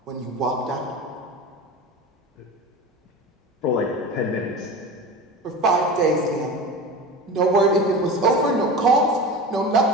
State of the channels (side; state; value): both; normal; correlation 0.30